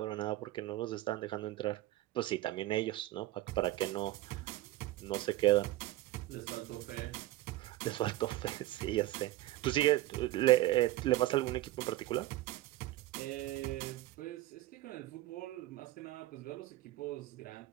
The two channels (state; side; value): quieter; left; 16.3 dB